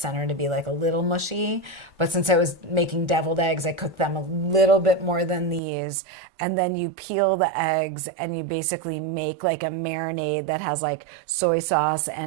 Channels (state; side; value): drops out; left; at 5.6 s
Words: to be like a little mushy. But since I was making deviled eggs, I cooked them a little bit more than these. And then you peel boil the eggs and you basically make like a marinade that has like soy sauce